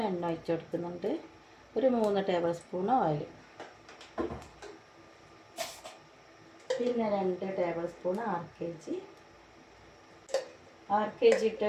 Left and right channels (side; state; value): both; identical; correlation 1.00